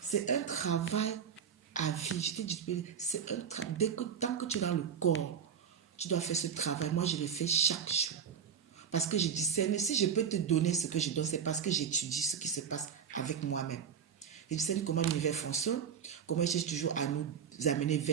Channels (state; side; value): quieter; left; 7.6 dB